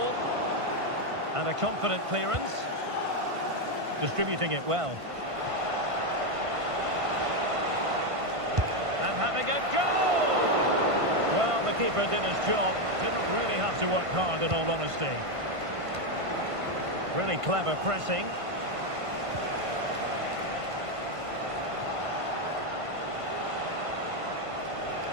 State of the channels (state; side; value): late; left; 1.5 ms